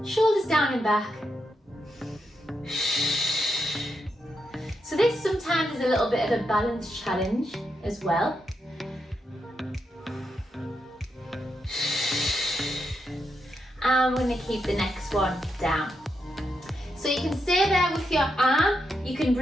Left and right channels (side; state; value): both; normal; correlation 0.83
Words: Shoulders down and back. So this sometimes is a little bit of a balance challenge as well. And we're going to keep the next one down. So you can stay there with your arm. You can